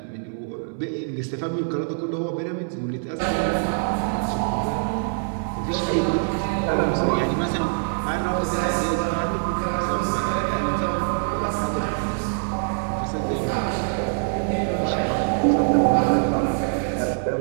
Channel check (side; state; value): left; silent; 59 dB below the other